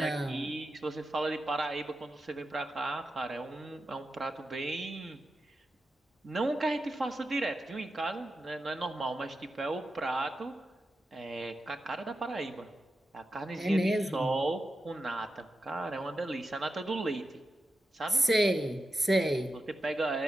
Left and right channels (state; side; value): normal; both; correlation 0.89